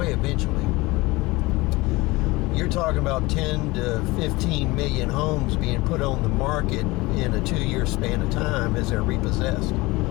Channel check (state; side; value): quieter; right; 22.0 dB